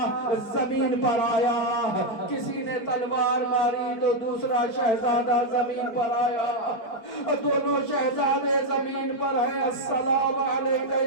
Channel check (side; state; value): right; late; 4.8 ms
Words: زمین پر آیا, کسی نے تلوار ماری تو دوسرا شہزادہ زمین پر آیا. دونوں شہزادے زمین پر ہیں. السلام علیکم